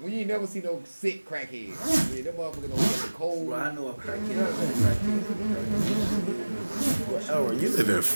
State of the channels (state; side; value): inverted; both; correlation -1.00